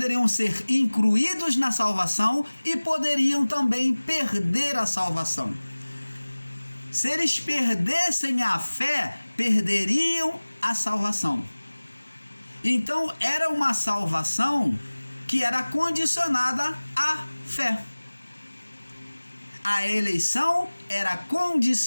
ser incluídos na salvação e poderiam também perder a salvação. Se eles perdessem a fé, perderiam a salvação. Então, era uma salvação que era condicionada à fé. A eleição era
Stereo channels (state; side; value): inverted; both; correlation -1.00